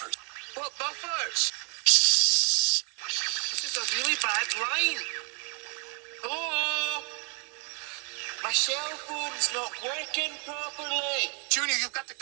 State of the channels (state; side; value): quieter; left; 36.6 dB